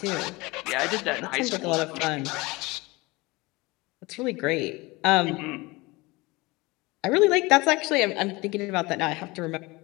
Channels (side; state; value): right; quieter; 23.1 dB